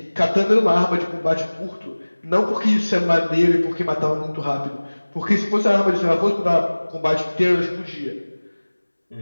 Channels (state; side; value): inverted; both; correlation -1.00